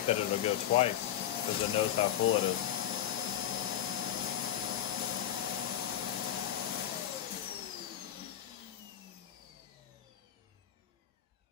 that it'll go twice because it knows how full it is.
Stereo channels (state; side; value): quieter; right; 11.0 dB